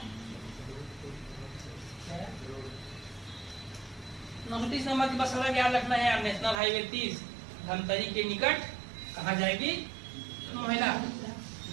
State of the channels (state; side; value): drops out; left; at 6.6 s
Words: 29 नंबर की बस सड़क याद रखना है, नेशनल हाईवे 30 धमतरी के निकट कहाँ जाएगी, महिला।